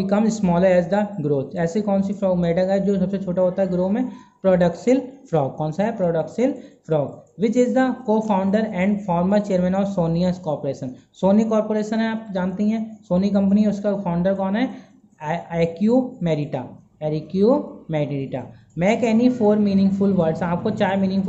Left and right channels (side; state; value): both; identical; correlation 1.00